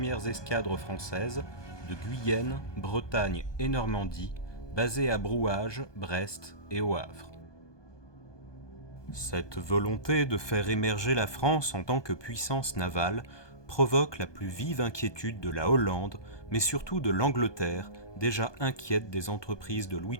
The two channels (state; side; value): late; right; 1.2 ms